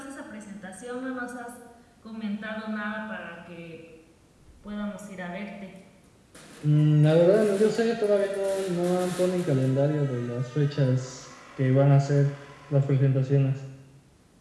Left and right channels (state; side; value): identical; both; correlation 1.00